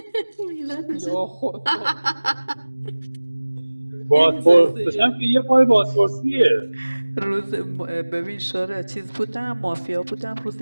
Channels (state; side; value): inverted; both; correlation -1.00